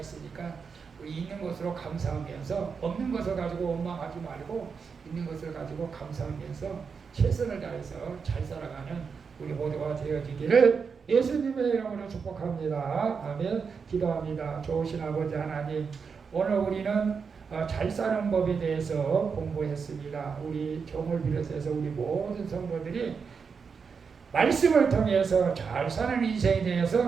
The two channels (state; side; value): quieter; left; 5.7 dB